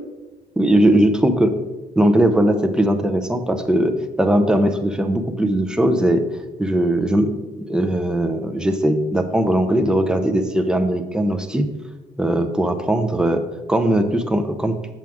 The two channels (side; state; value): both; normal; correlation 0.84